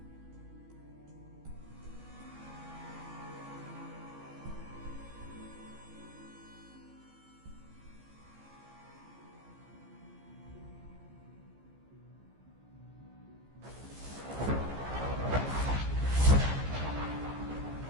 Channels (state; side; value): late; left; 15 ms